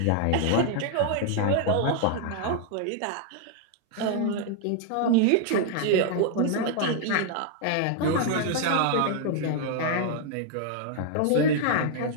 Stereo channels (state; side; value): different; both; correlation 0.00